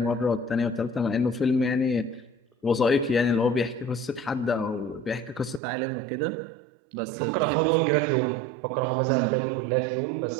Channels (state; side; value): drops out; left; at 5.6 s